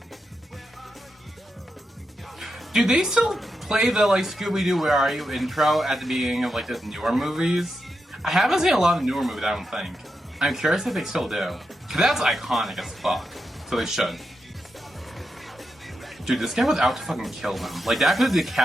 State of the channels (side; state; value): both; normal; correlation 0.86